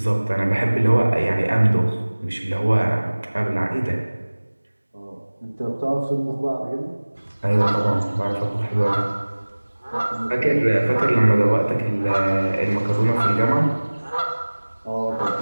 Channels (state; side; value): inverted; both; correlation -1.00